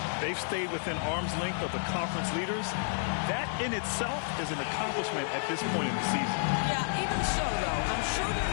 they've stayed within arm's length of the conference leaders. That in itself is an accomplishment at this point in the season. Yeah, even so, though, I'm sure they're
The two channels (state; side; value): silent; right; 57 dB below the other